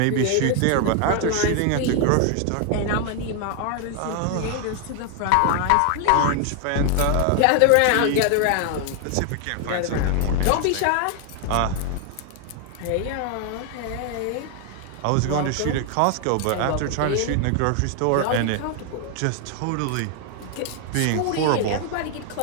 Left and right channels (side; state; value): both; different; correlation 0.00